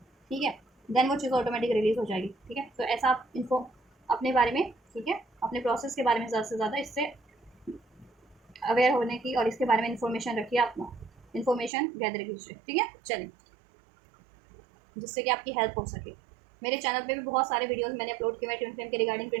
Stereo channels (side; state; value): left; drops out; at 11.7 s